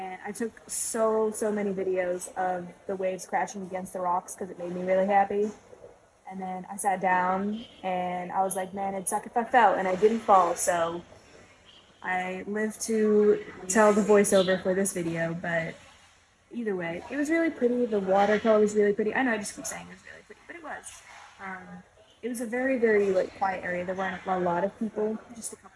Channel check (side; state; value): both; identical; correlation 1.00